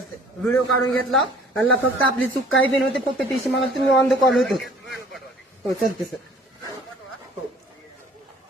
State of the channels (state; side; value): normal; both; correlation 0.52